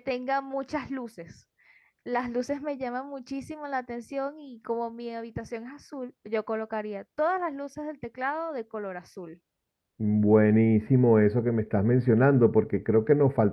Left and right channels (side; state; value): both; identical; correlation 1.00